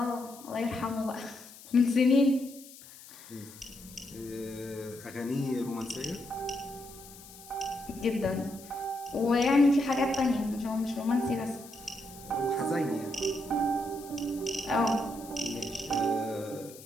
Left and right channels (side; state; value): left; noise; hiss, 18 dB below the sound